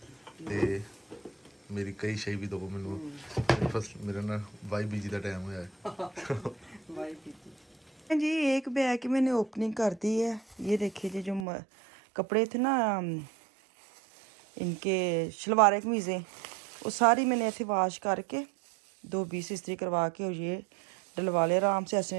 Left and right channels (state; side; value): drops out; left; at 11.5 s